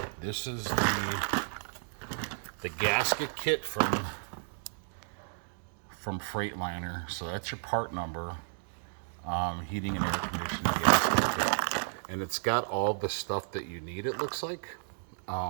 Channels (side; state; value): left; silent; digital silence